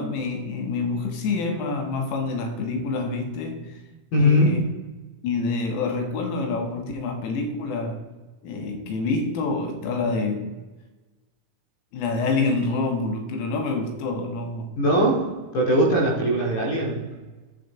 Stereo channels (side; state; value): right; late; 18 ms